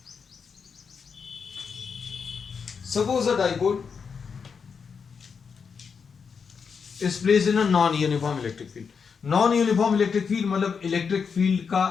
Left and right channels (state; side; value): quieter; right; 6.0 dB